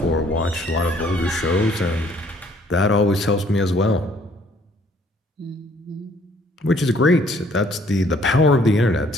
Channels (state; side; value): normal; both; correlation 0.61